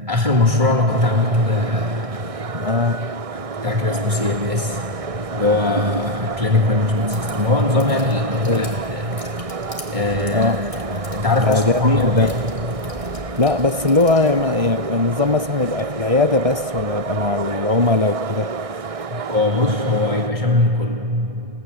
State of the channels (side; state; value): left; late; 1.6 ms